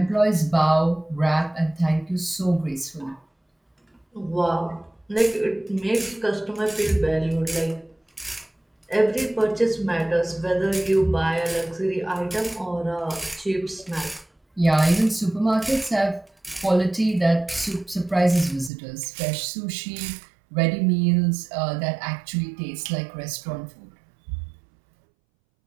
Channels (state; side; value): drops out; left; at 18.7 s